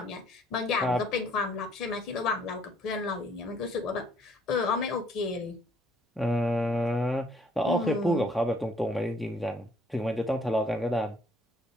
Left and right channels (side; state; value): both; normal; correlation 0.64